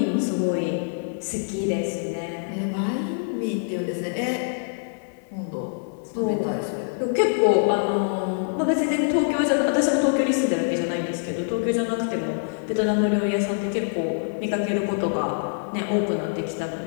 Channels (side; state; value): right; silent; digital silence